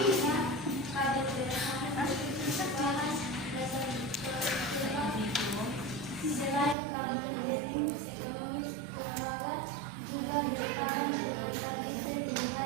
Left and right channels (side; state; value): left; drops out; at 6.8 s